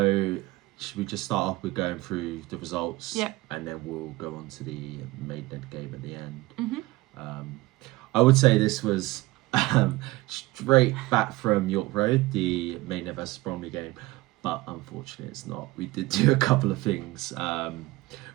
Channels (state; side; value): quieter; left; 19.9 dB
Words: should we just start off with going through the results? Yeah. And then we'll go on to the Maidenhead game at the end. Mm-hmm. I would say this was straight back from York Road, the Maidenhead versus Bromley game. But unfortunately it's not. We did do a couple of things.